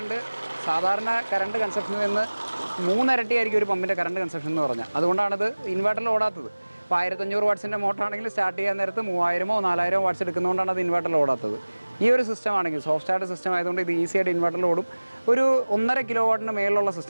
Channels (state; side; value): inverted; both; correlation -1.00